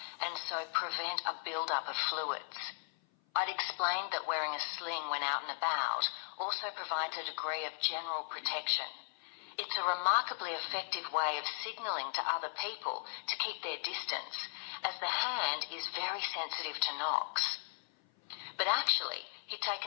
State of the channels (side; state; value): right; silent; 53 dB below the other